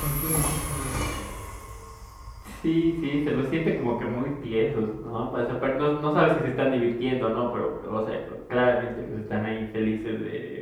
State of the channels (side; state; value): both; identical; correlation 1.00